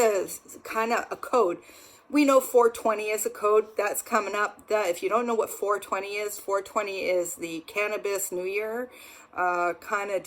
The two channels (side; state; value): both; identical; correlation 1.00